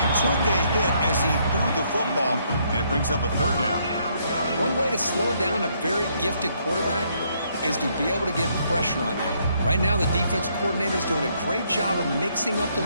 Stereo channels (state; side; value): inverted; both; correlation -0.71